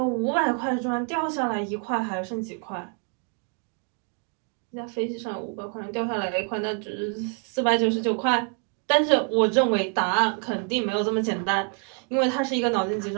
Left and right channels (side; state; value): left; quieter; 39.2 dB